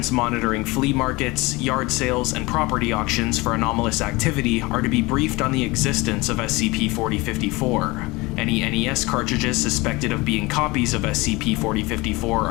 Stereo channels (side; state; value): right; quieter; 23.0 dB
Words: monitoring flea markets, yard sales, and property auctions for anomalous activity are to be briefed on the existence of SCP-4054. Any NES cartridges suspected of being copies of SCP-4054